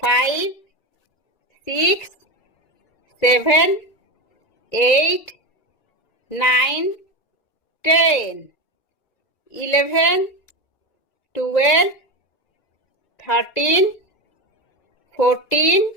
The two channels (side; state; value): right; late; 2.0 ms